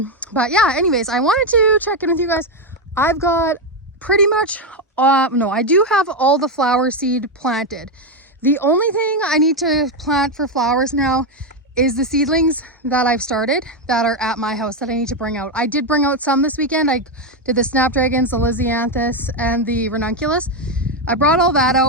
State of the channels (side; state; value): both; normal; correlation 0.07